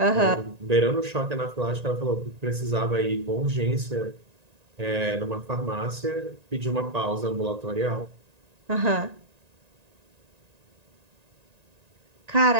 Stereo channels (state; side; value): late; left; 1.9 ms